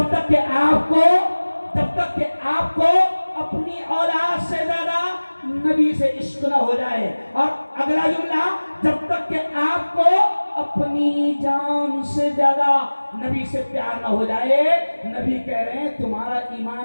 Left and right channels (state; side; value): inverted; both; correlation -1.00